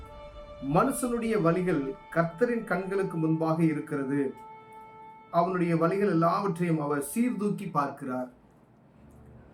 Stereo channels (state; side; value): identical; both; correlation 1.00